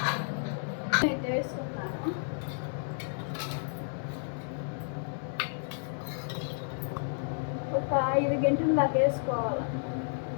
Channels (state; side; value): silent; right; digital silence